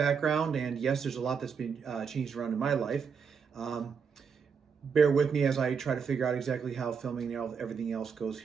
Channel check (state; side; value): quieter; left; 6.2 dB